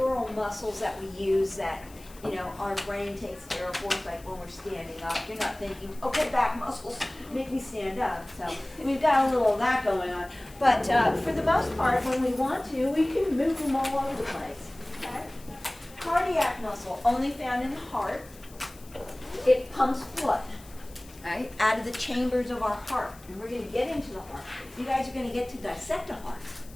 muscles that we use that our brain takes care of for us, like when we're standing up. You're not thinking, okay, back muscles make me stand up. So we've got a little of that going on. But for the most part, when we want to, we can move them all over the place. Okay? Cardiac muscle, only found in the heart. It pumps blood, right, out of the chambers of our heart. And we're going to get into the heart. You guys are going to get to dissect a heart.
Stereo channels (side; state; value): left; noise; hiss, 22 dB below the sound